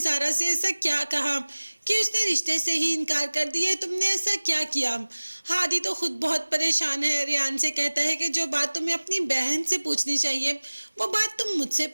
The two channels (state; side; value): inverted; both; correlation -1.00